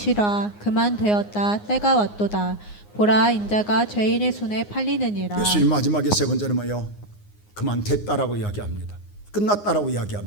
그만 되었다. 때가 왔도다. 보라, 인자가 죄인의 손에 팔리느니라. 예수님 마지막에 세 번째는 뭐예요? 그만 됐다라고 이야기합니다. 끝났다라고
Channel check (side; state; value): right; late; 9.6 ms